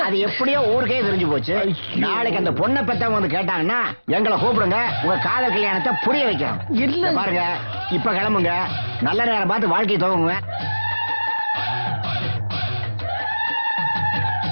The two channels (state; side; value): inverted; both; correlation -1.00